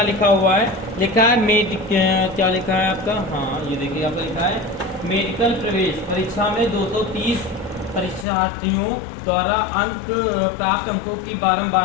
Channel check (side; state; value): right; drops out; at 8.2 s